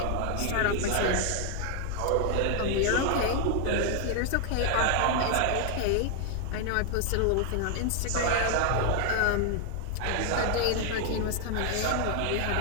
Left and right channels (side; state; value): both; different; correlation 0.00